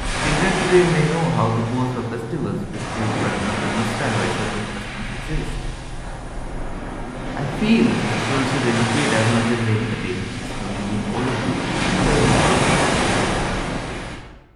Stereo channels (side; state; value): both; identical; correlation 1.00